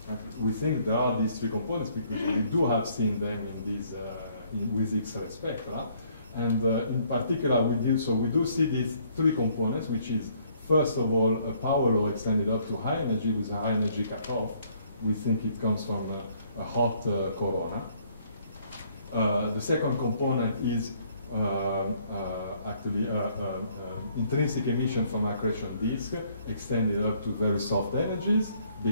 we think there are these three components because we do have seen them in these, with X-ray spectra. And in particular, we do see these three components, which is, first of all, a power law extended up to high energy with a high energy cutoff. We think it comes from a hot corona. The second component is actually intrinsic emission from accretion disk extended up to very soft energies,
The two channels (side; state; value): both; inverted; correlation -0.65